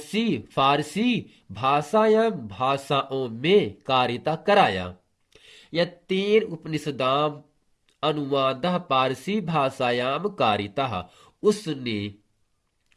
फारसी भाषायाम, भाषाओं में कारिता कराया। यत्तेन उपनिषदाम अनुवाद पारसी भाषायाम कारिता, उसने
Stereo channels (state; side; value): identical; both; correlation 1.00